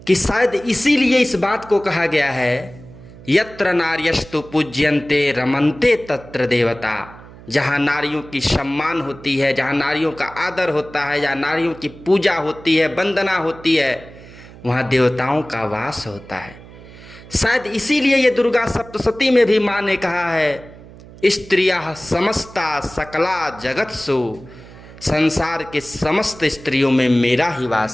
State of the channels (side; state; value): right; noise; hum, 19 dB below the sound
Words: कि शायद इसीलिए इस बात को कहा गया है, यत्र नार्यस्तु पूज्यन्ते रमन्ते तत्र देवता। जहाँ नारियों की सम्मान होती है, जहाँ नारियों का आदर होता है, जहाँ नारियों की पूजा होती है, वंदना होती है, वहाँ देवताओं का वास होता है। शायद इसीलिए ये दुर्गा सप्तशती में भी माँ ने कहा है, स्त्रियः समस्ता सकला जगत्सु, संसार के समस्त स्त्रियों में मेरा ही